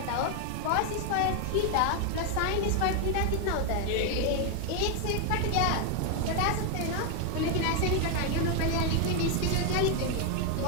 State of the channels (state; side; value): different; both; correlation 0.01